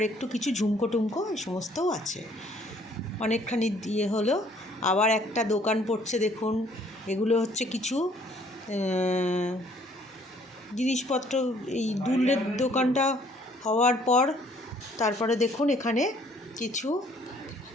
একটু কিছু ঝুমকো টুমকো এই সমস্তও আছে। অনেকখানি দিয়ে হলো। আবার একটা দোকান পড়ছে দেখুন, এগুলো হচ্ছে কিছু জিনিসপত্র। এই দুলের দোকানটা হওয়ার পর তারপরে দেখুন এখানে কিছু,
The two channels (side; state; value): both; normal; correlation 0.60